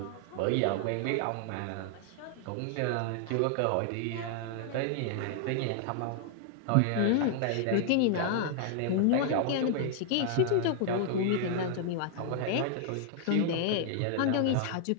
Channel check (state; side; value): different; both; correlation 0.00